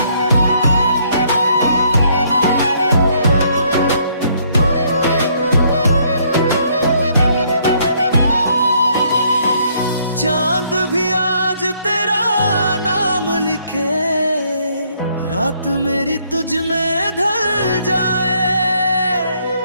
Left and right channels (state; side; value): inverted; both; correlation -0.68